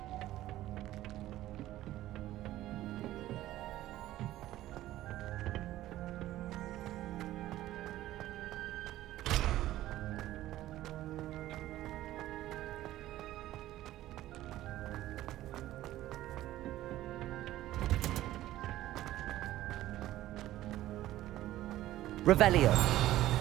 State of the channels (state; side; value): quieter; left; 14.7 dB